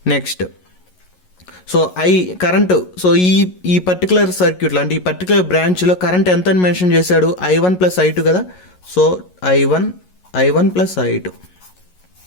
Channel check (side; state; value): right; late; 11 ms